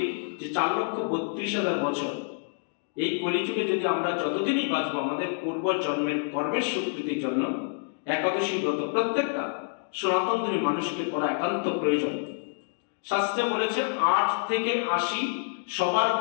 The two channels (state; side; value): silent; right; digital silence